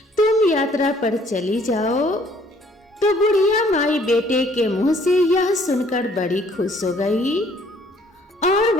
तुम यात्रा पर चली जाओ। तो बुढ़िया माई बेटे के मुंह से यह सुनकर बड़ी खुश हो गई और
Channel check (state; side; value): normal; both; correlation 0.61